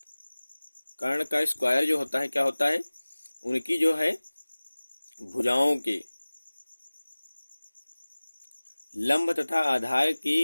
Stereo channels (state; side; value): inverted; both; correlation -1.00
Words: कर्ण का स्क्वायर जो होता है क्या होता है, उनकी जो है भुजाओं के लंब तथा आधार